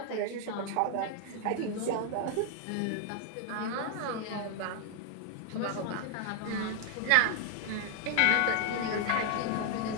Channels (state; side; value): different; both; correlation 0.00